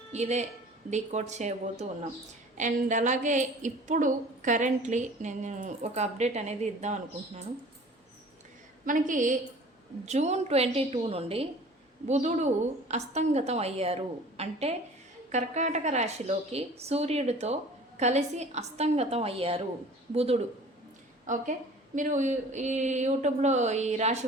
ఇదే డీకోడ్ చేయబోతూ ఉన్నాం. అండ్ అలాగే ఇప్పుడు కరెంట్లీ నేను ఒక అప్డేట్ అనేది ఇద్దాం అనుకుంటున్నాను. మనకి జూన్ 22 నుండి బుధుడు అస్తంగతం అయ్యారు. అంటే కర్కాటక రాశిలోకి సూర్యుడితో కలిసి అస్తంగతం అయ్యారు బుధుడు. ఓకే, మీరు ఈ యూట్యూబ్లో ఈ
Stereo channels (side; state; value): both; normal; correlation 0.45